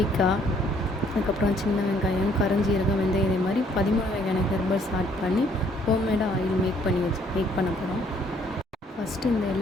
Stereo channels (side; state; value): both; normal; correlation 0.64